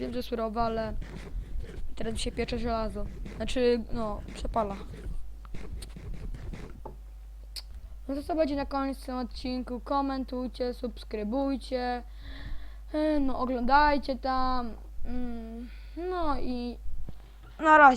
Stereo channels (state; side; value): identical; both; correlation 1.00